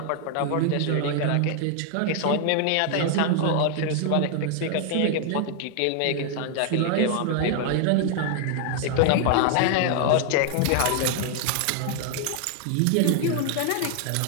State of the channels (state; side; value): different; both; correlation 0.00